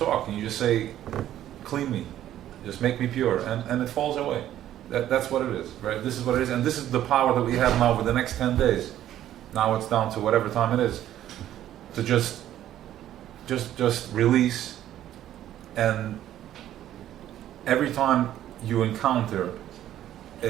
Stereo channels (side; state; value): left; quieter; 12.1 dB